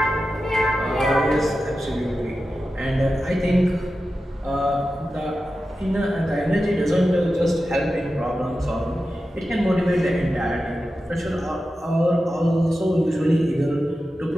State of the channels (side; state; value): both; normal; correlation 0.92